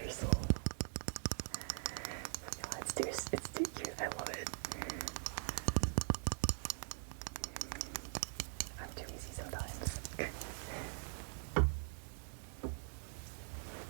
soul. It's too cute. I love it. I'm too easy sometimes. Okay.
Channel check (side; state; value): left; silent; digital silence